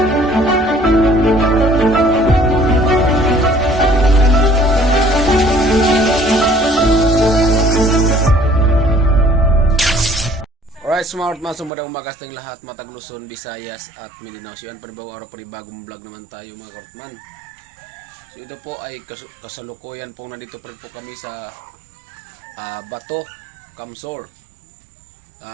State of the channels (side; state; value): left; drops out; at 11.7 s